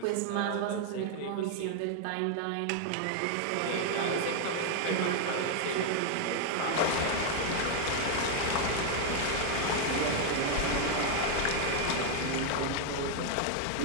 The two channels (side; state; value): both; different; correlation 0.00